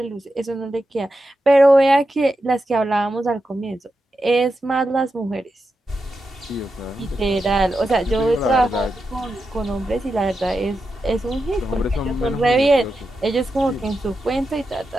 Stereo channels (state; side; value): normal; both; correlation 0.89